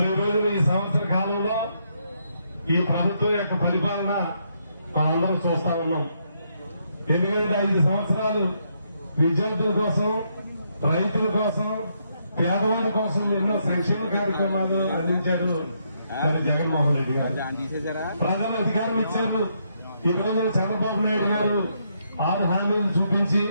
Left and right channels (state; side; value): inverted; both; correlation -0.76